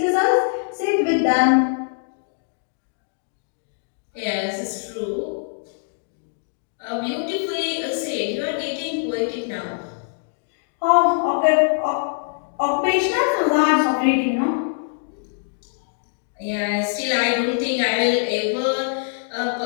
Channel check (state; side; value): silent; right; digital silence